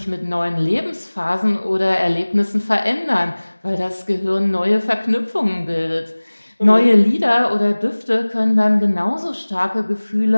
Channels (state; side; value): inverted; both; correlation -1.00